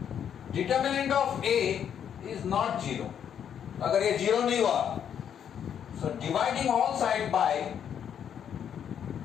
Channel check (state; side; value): quieter; right; 8.7 dB